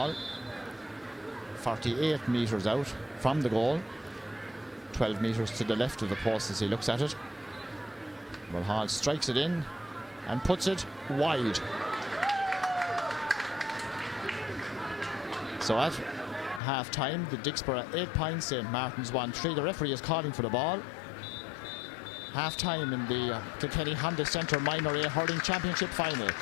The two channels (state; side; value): drops out; right; at 16.6 s